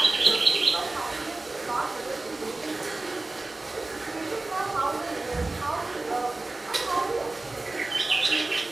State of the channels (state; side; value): quieter; left; 3.1 dB